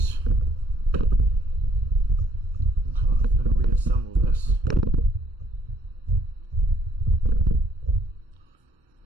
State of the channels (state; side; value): normal; both; correlation 0.64